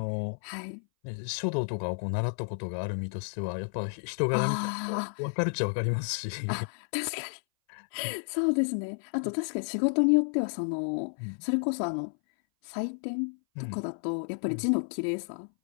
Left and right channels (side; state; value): right; silent; 57 dB below the other